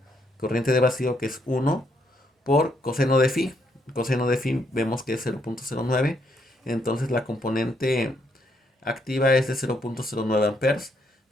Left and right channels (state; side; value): normal; both; correlation 0.74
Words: corriente de vacío, que es 1 por coseno de phi. Coseno de phi vemos que es 0.09. Entonces la componente activa es de 0.09 amperes,